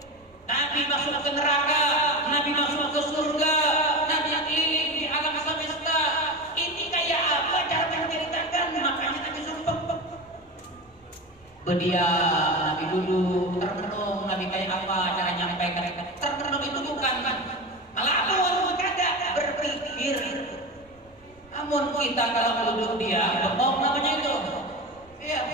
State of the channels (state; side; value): noise; right; rumble, 30 dB below the sound